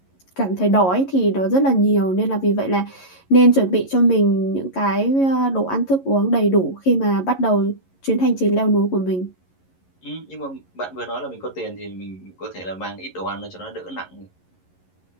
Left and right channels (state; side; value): late; right; 11 ms